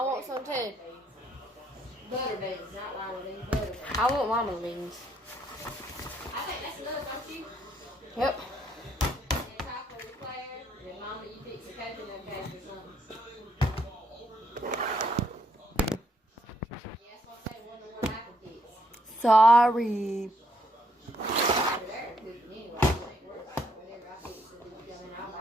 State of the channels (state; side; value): normal; both; correlation 0.72